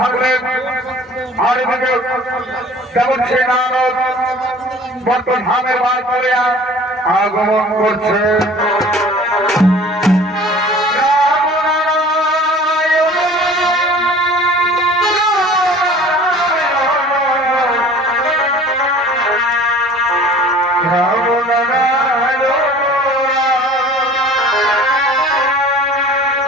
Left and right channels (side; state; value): both; normal; correlation 0.46